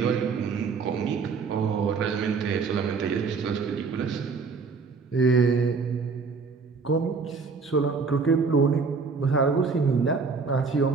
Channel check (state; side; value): quieter; left; 4.9 dB